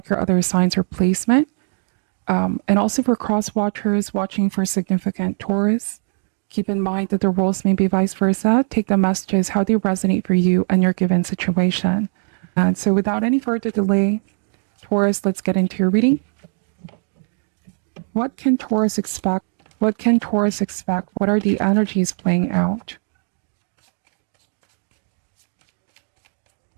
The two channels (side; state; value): left; silent; 65 dB below the other